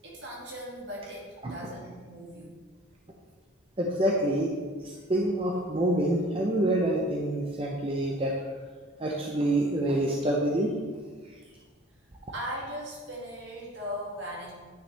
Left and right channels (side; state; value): both; normal; correlation 0.49